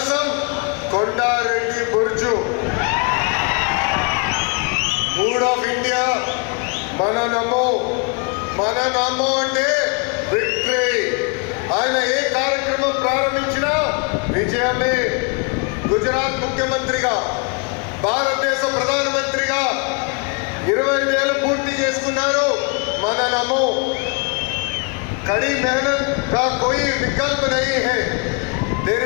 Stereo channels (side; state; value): right; quieter; 33.1 dB